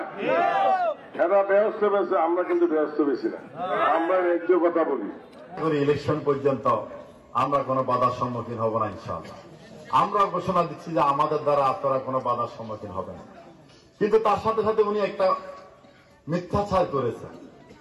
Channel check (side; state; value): both; identical; correlation 1.00